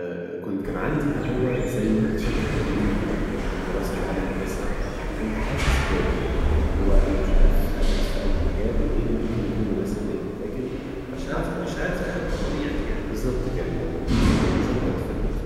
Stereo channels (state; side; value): identical; both; correlation 1.00